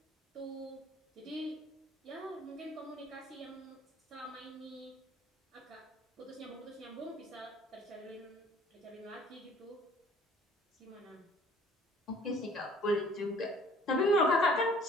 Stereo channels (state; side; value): normal; both; correlation 0.54